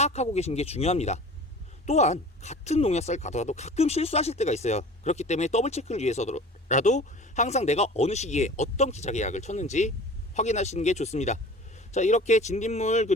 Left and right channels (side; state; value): both; normal; correlation 0.42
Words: 계신 게 중요합니다. 또한 같은 농약사를 가더라도 가끔 실수하실 때가 있어요. 그렇기 때문에 더블 체크를 위해서라도 항상 내가 어느 시기에 어떤 기작의 약을 쳤는지 확인하시는 게 좋습니다. 자, 이렇게 진딧물